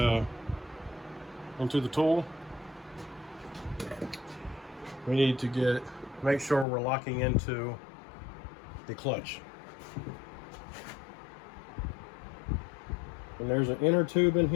tool, we need to make sure we're locking into the clutch. And there's an inner tube in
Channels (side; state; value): right; drops out; at 6.7 s